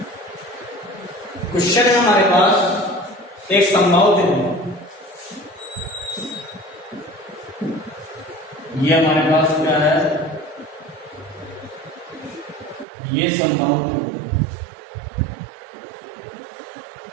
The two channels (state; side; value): drops out; left; at 12.9 s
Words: क्वेश्चन है हमारे पास एक संभाव त्रिभुज, ये हमारे पास क्या है, ये संभाव त्रिभुज,